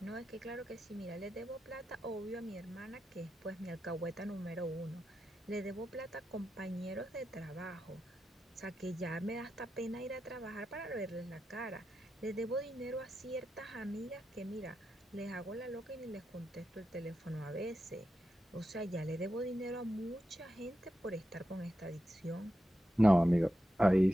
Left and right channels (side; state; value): both; normal; correlation 0.89